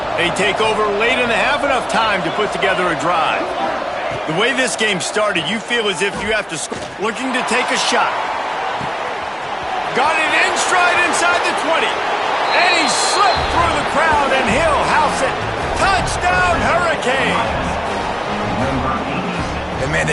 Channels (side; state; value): both; identical; correlation 1.00